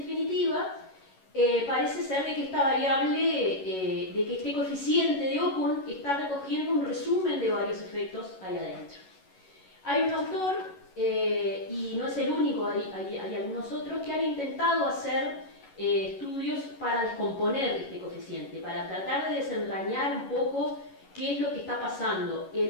parece ser de que esta variable, de que este coeficiente de Okun está recogiendo un resumen de varios efectos ahí adentro. Hay un autor, y no es el único, hay algunos otros que han intentado hacer estudios para descomponer este coeficiente, para tratar de desentrañar un poco qué es lo que está pasando.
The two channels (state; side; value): late; right; 11 ms